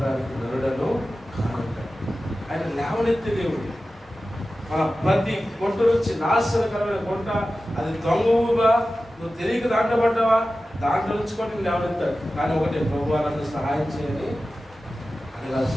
నరుడను కానుంటాడు. ఆయన లేవనెత్తే దేవుడు. మన ప్రతి గుంట నుంచి నాశనకరమైన గుంట, అది దొంగవుగా నువ్వు తెలియక దాంట్లో పడ్డావా, దాంట్లో నుంచి కూడా నేను లేవనెత్తాడు. కానీ ఒకటే, ప్రభువా నన్ను సహాయం చేయని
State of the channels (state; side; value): normal; both; correlation 0.95